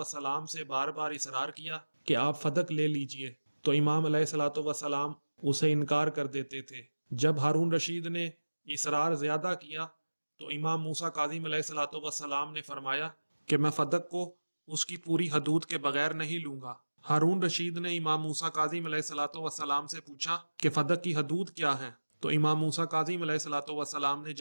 سے بار بار اصرار کیا کہ آپ فدق لے لیجئے، تو امام علیہ الصلوۃ والسلام اسے انکار کر دیتے تھے۔ جب ہارون رشید نے اصرار زیادہ کیا تو امام موسیٰ کاظم علیہ الصلوۃ والسلام نے فرمایا کہ میں فدق کو اس کی پوری حدود کے بغیر نہیں لوں گا۔ ہارون رشید نے امام موسیٰ کاظم علیہ الصلوۃ والسلام سے پوچھا کہ فدق کی حدود کیا ہیں؟ تو امام موسیٰ کاظم علیہ الصلوۃ والسلام نے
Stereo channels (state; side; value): inverted; both; correlation -1.00